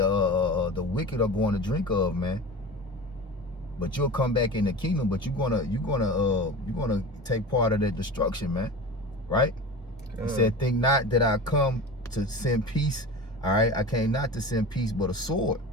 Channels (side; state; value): both; normal; correlation 0.32